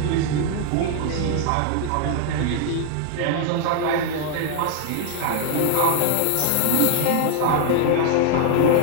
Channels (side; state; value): both; different; correlation 0.00